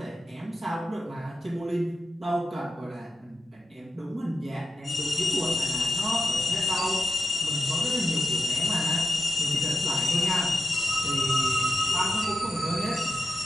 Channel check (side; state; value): both; normal; correlation 0.88